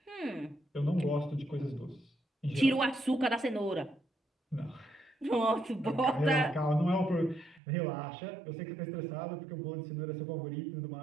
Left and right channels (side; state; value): left; drops out; at 7.6 s